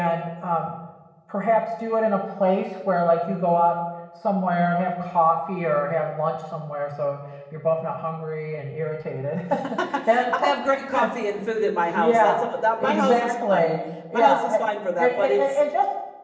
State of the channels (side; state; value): both; identical; correlation 1.00